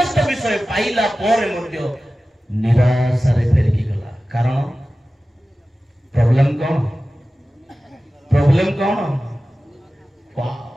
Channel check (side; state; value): both; normal; correlation 0.95